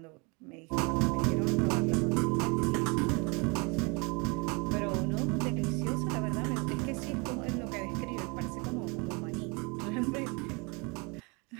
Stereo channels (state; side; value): quieter; left; 29.9 dB